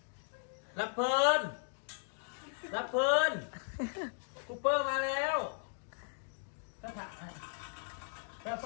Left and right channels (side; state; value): right; silent; digital silence